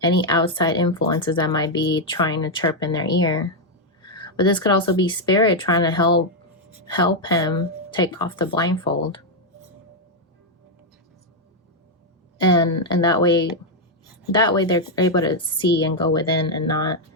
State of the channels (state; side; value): normal; both; correlation 0.00